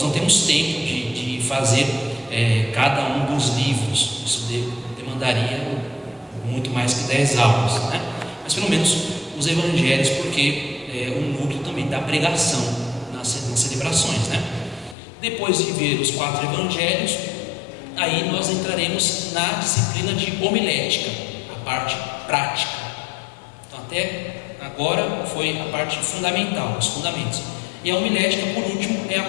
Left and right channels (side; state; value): right; drops out; at 15.0 s